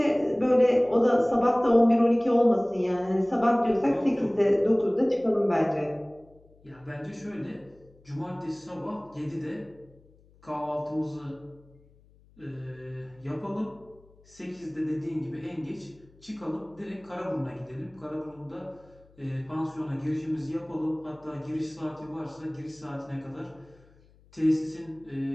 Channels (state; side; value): noise; left; hum, 28 dB below the sound